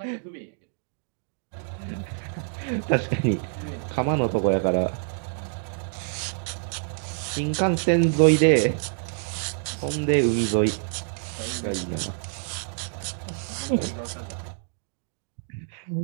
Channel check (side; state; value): left; silent; digital silence